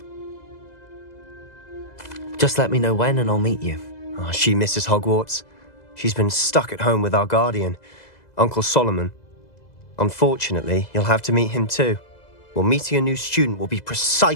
Just let me know when and I'll meet you. Oh, she misses Hogwarts. She's been stuck at home with our guardian, Uncle Solomon. Unfortunately, you'll have to meet him too. Well, meeting a new student will be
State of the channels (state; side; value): late; right; 2.0 ms